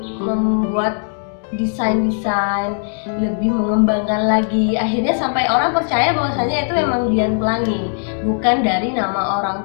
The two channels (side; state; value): right; silent; digital silence